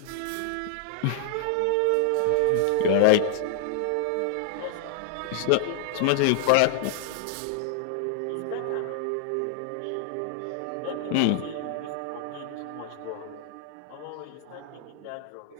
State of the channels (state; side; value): different; both; correlation 0.00